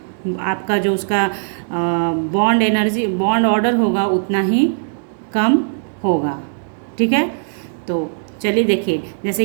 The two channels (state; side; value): silent; left; 67 dB below the other